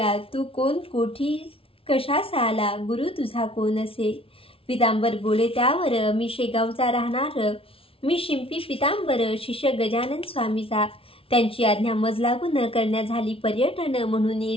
तू कोण, कोठी, कशास आला, गुरु तुझा कोण असे. पितांबर बोले त्यावर, मी शेगावचा राहणार, मी शिंपी पितांबर, शिष्य गजानन स्वामीचा. त्यांची आज्ञा मज लागून करण्या झाली पर्यटन, म्हणून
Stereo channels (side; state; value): right; late; 0.26 ms